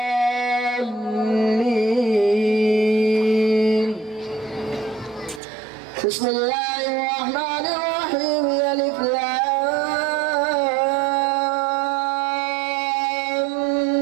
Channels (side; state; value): left; drops out; at 5.4 s